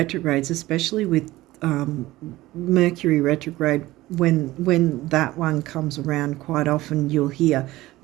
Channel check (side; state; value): left; quieter; 17.6 dB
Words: especially with Mercury retrograde, when that one comes around, quite often you'll hear,